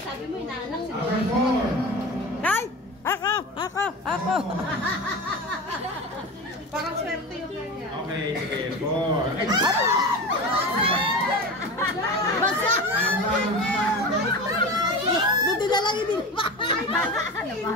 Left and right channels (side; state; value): both; normal; correlation 0.28